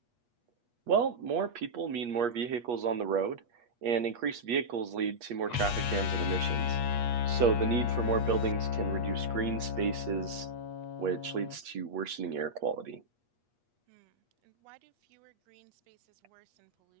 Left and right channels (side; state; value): left; late; 8.4 ms